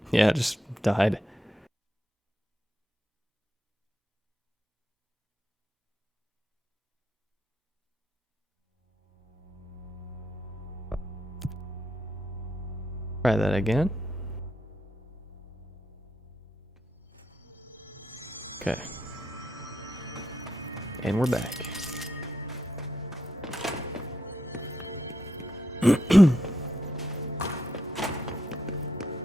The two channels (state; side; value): normal; both; correlation 0.81